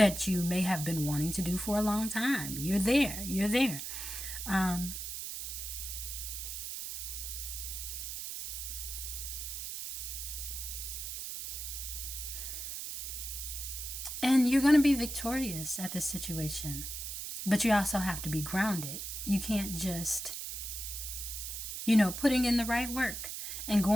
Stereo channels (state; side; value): noise; right; hiss, 6 dB below the sound